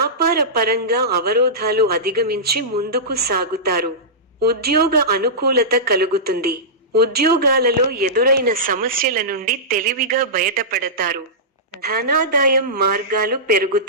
పరంగా అవరోధాలు అధిగమించి ముందుకు సాగుతారు. ఉద్యోగ అనుకూలత కలుగుతుంది. ఉద్యోగాలలో ఎదురైన సమస్యల నుండి తెలివిగా బయటపడతారు. ధనాదాయం మార్గాలు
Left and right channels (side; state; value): both; normal; correlation -0.16